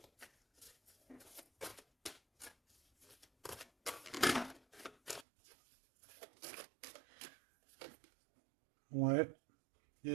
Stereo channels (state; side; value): drops out; left; at 5.2 s